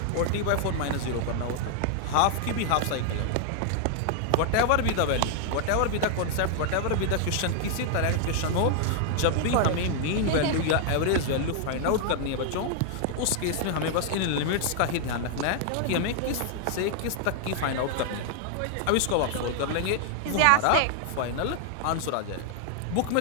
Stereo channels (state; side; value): different; both; correlation 0.00